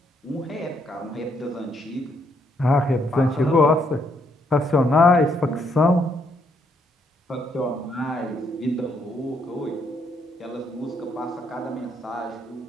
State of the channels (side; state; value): both; normal; correlation 0.73